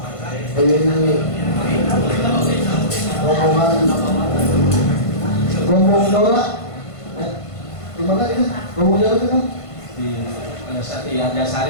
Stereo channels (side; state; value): right; late; 1.5 ms